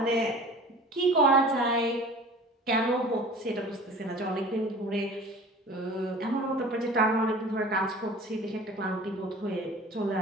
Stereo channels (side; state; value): both; normal; correlation 0.42